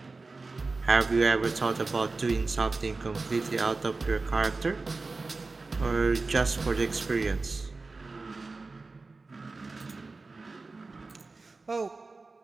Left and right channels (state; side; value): quieter; left; 3.7 dB